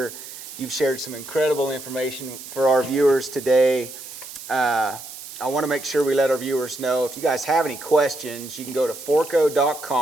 You've shared some incredible information for our viewers today. I want to make sure we let our viewers know, if you guys have any questions, you can go to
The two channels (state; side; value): noise; right; hiss, 13 dB below the sound